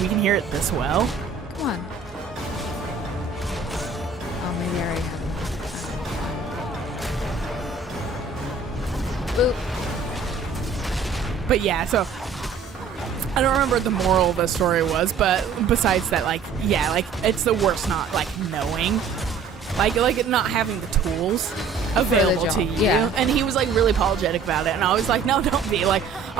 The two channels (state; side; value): quieter; left; 5.2 dB